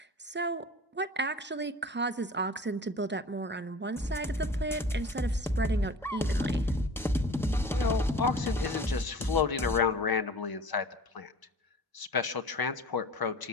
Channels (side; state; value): both; normal; correlation 0.41